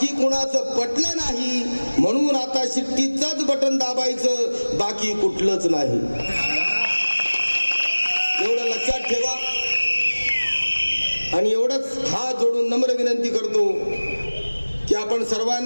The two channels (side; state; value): both; inverted; correlation -1.00